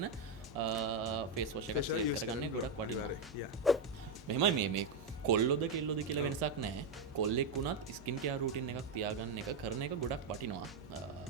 ෆේස් වොෂ් එකක් සිලෙක්ට් කරගන්නේ ගොඩක් වටිනවා. මෙහෙමයි මේ කොල්ලොද කෙල්ලොද කියලා වෙනසක් නැහැ. කොල්ලෙක් වුණත් ස්කින් කෙයාර් රූටින් එකක් තියාගන්න එක කරන එක ගොඩක් වටිනවා.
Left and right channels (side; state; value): left; quieter; 3.9 dB